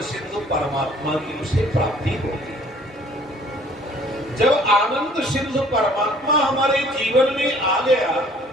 सिंधु परमात्मा की उसे प्राप्ति होगी। जब आनंद सिंधु परमात्मा हमारे जीवन में आ गया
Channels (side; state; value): both; normal; correlation 0.56